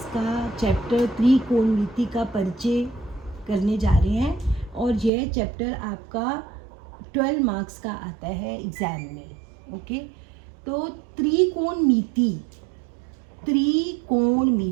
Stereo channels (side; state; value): left; drops out; at 5.1 s